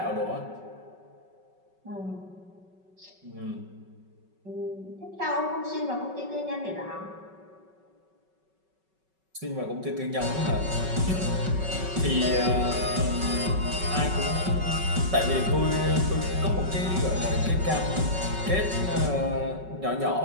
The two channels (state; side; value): late; left; 5.3 ms